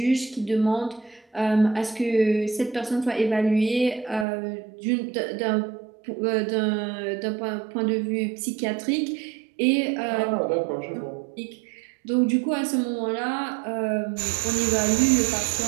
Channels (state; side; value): drops out; left; at 4.2 s